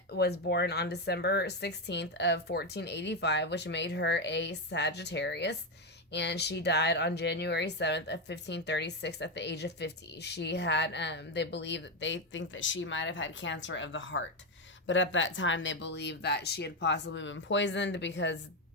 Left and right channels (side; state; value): both; normal; correlation 0.09